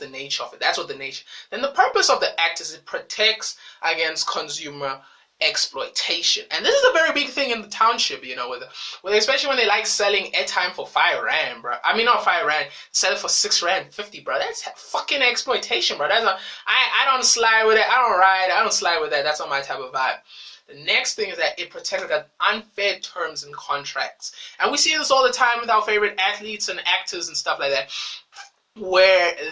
nature of it. That's what the nature. Then the purpose of the act is it protects against consumer exploitation. And this is a very big thing in the township, especially when they like selling airtime for 5 rand, bro. Not 5 rand, sell it for 6 rand 50, bro. That's fucking exploitation, bro. I don't slide with it. I don't slide with that. That's not my type of vibe. The next thing is that it protects against unfair terms and contracts. And we see this all the time with our favorite athletes and actors and stuff like that, where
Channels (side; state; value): both; identical; correlation 1.00